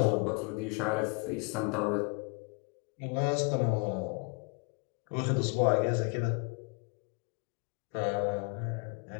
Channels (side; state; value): right; quieter; 33.8 dB